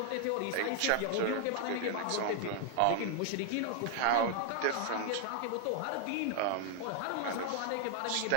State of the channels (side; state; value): both; different; correlation 0.00